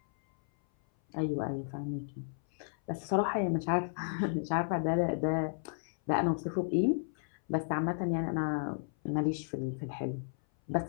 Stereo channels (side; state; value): right; silent; 56 dB below the other